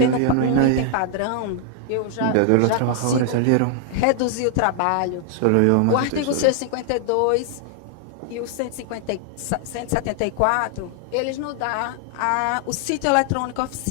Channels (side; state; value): both; different; correlation 0.00